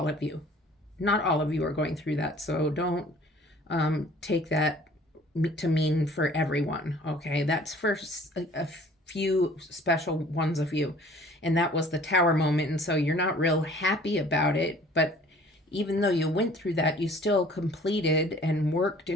of you. Not all of you are going through that. So don't take that to mean for everyone. Okay, that's for a few special ones of you. And that was the Tower moment. And so you're not real happy about it. But even though you went through that, you still completed and worked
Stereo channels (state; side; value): normal; both; correlation 0.51